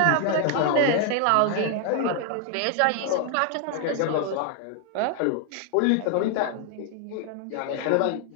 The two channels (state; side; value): different; both; correlation 0.00